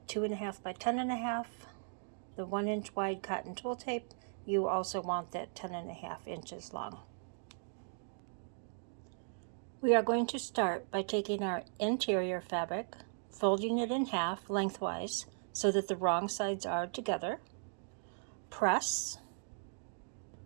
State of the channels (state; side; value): silent; left; digital silence